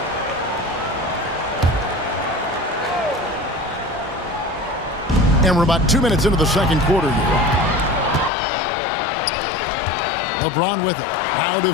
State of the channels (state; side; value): drops out; right; at 8.3 s